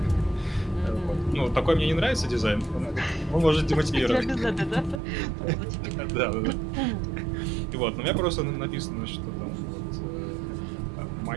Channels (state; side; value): drops out; left; at 5.0 s